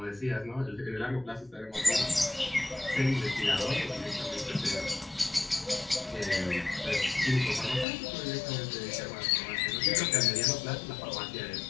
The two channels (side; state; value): right; drops out; at 7.9 s